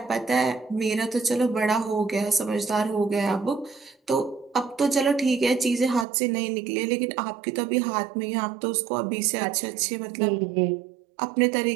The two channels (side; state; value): left; drops out; at 6.1 s